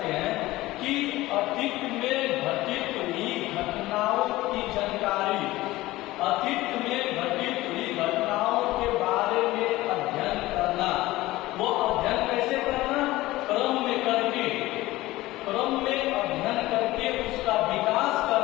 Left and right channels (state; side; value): quieter; right; 18.0 dB